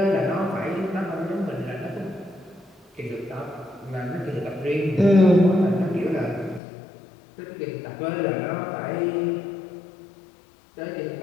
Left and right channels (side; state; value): right; drops out; at 6.6 s